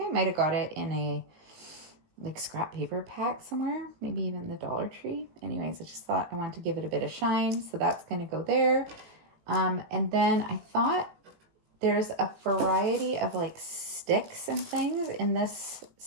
I might have got it in a like scrap paper pack somewhere, maybe even the Dollar Tree. Anyways, I just thought I wanted to give it a bit of shine, so that's going to go there. And then I thought there's a variety of like sticks and things in this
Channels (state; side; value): late; left; 18 ms